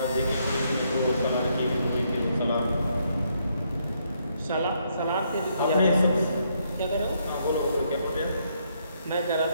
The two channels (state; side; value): inverted; both; correlation -0.74